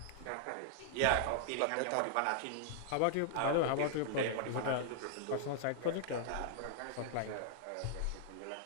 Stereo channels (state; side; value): different; both; correlation -0.01